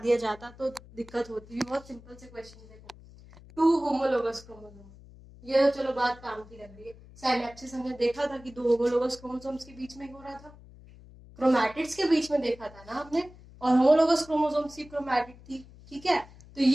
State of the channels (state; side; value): noise; left; hum, 21 dB below the sound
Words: जाता तो दिक्कत होती। बहुत सिंपल से क्वेश्चन। देखो 2 होमोलोगस क्रोमोसोम, ये तो चलो बात काम की लग रही है। साइनेप्सिस हमने देखा था कि 2 होमोलोगस क्रोमोसोम्स के बीच में हो रहा था, क्रोमैटिड्स के बीच में देखा था ना हमने, और होमोलोगस क्रोमोसोम्स की क्रोमैटिड थी। ठीक है, तो